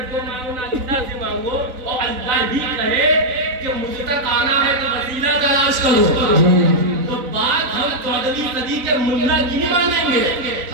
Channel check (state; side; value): late; left; 4.0 ms